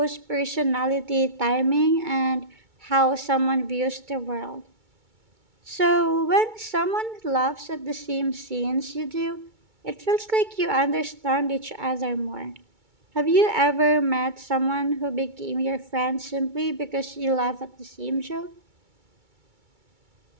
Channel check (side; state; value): left; late; 2.2 ms